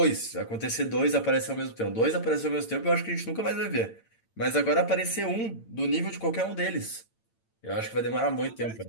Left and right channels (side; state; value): right; late; 8.9 ms